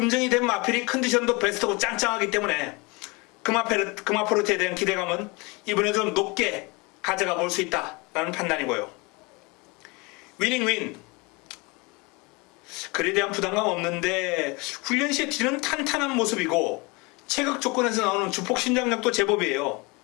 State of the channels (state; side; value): quieter; right; 27.0 dB